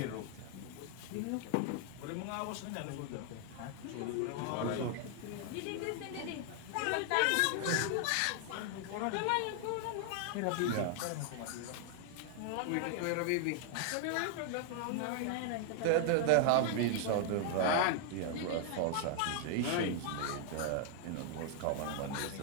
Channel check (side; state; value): both; different; correlation 0.00